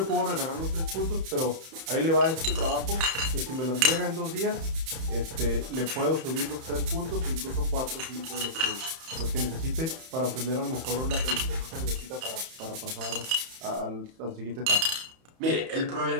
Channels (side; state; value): left; late; 31 ms